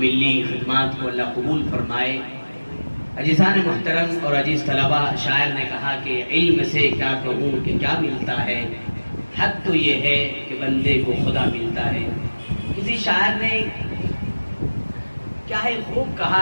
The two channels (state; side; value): inverted; both; correlation -1.00